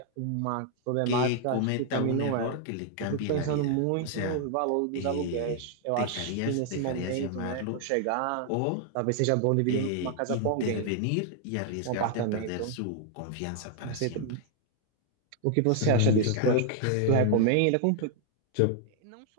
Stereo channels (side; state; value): both; different; correlation 0.00